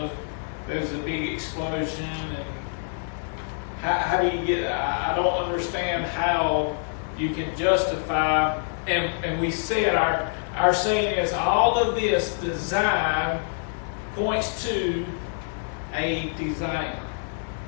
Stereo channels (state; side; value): silent; right; digital silence